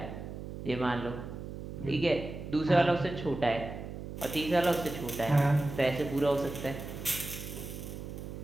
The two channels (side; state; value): right; noise; hum, 9 dB below the sound